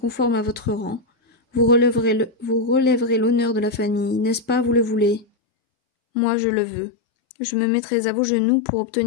à votre rang, vous relèverez l'honneur de la famille, n'est-ce pas, vous le voulez? Moi, je le veux. Je me mettrai à vos genoux pour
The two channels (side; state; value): right; drops out; at 5.2 s